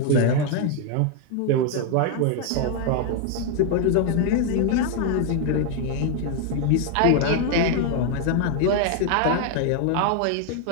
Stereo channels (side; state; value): both; different; correlation 0.01